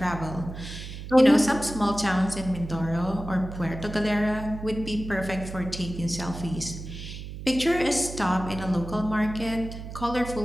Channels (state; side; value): noise; right; hum, 10 dB below the sound